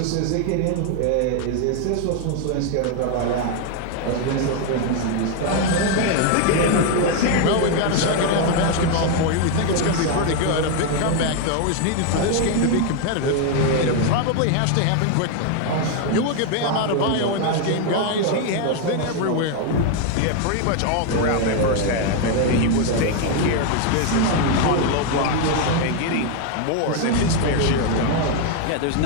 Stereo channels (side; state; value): both; different; correlation 0.01